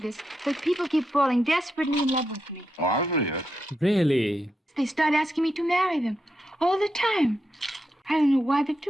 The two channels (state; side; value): normal; both; correlation 0.84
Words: this, but people keep falling desperately in love with me. Oh, I believe it. Really? They start asking me to marry them all the time. I don't know why they